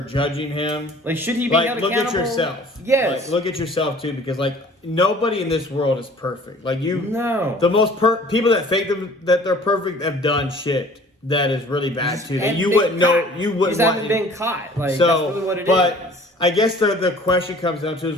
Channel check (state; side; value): normal; both; correlation 0.50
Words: judging him, Like, should he be held look accountable? at yourself. Yes. Like, look at yourself too, because nobody in this world is perfect. Like you, No. the most people that think that they're perfect have done shit that is really bad too. That And you been wouldn't know. caught. You wouldn't Just want. haven't been caught. Like, So, that's really what it is. but I guess the question comes down to is